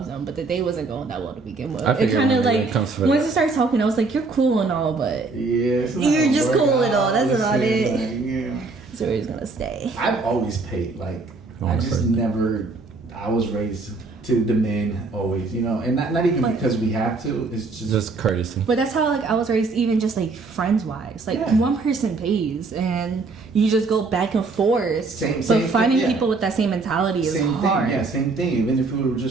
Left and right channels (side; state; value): left; quieter; 3.8 dB